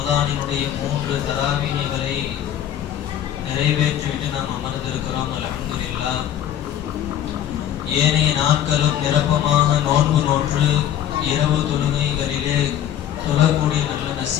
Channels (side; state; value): right; quieter; 10.7 dB